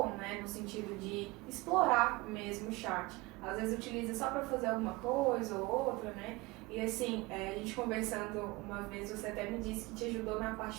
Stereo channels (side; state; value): left; quieter; 22.7 dB